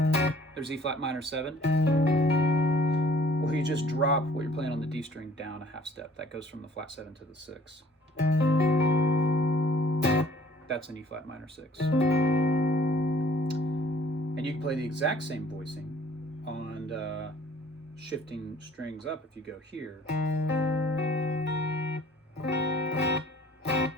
there's E flat minor 7, where you just drop what you're playing on the D string down a half step. That goes from the flat 7 to the 6. That's an E flat minor 6. And you can play the exact same voicing on shifting strings up if you go here.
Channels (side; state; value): both; normal; correlation 0.54